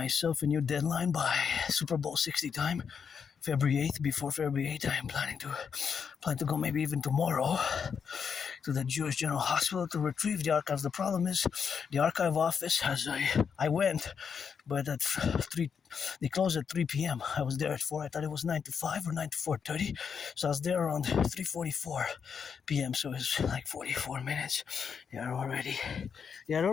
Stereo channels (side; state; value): right; quieter; 6.6 dB